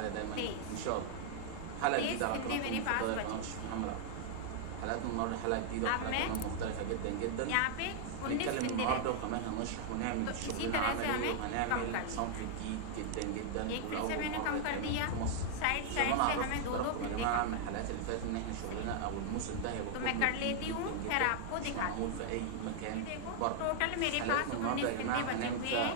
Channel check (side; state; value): both; different; correlation -0.01